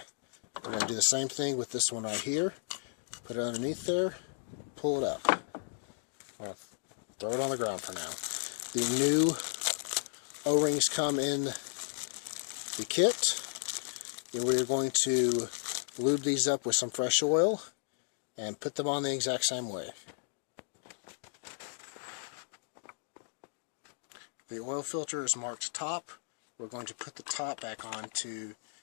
We're going to do the same thing with this one right here. Put it underneath there, pull it up. I'll throw it on the ground for now. The new O-rings come in the kit. And we're going to lube these up with some fresh oil and put them on the exact same way. The oil filter is marked top. We're going to put the top back onto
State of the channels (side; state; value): right; silent; digital silence